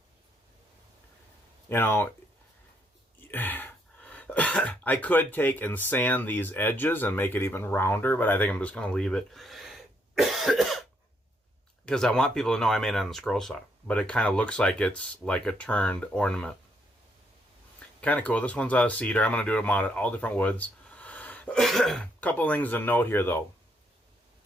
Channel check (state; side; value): normal; both; correlation 0.73